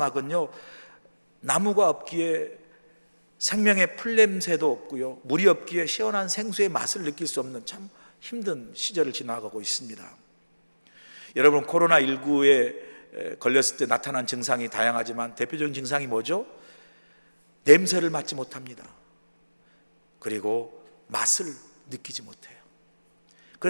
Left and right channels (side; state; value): both; inverted; correlation -1.00